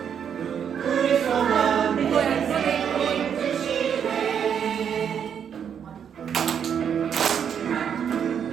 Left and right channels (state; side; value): quieter; left; 8.0 dB